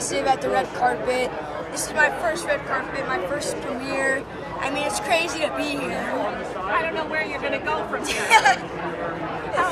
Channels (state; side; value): identical; both; correlation 1.00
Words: at the red carpet. This is my first red carpet, my first premiere. I mean, it's crazy to be here. I don't know where you're going to go from here. How